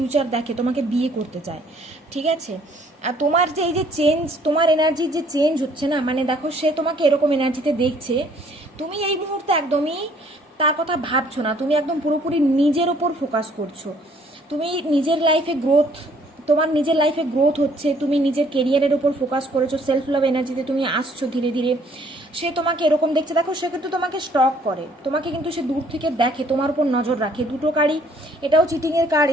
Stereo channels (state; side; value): normal; both; correlation 0.61